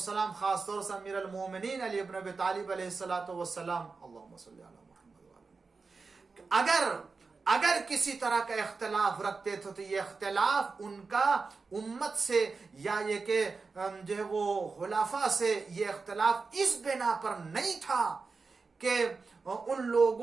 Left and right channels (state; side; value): quieter; left; 4.4 dB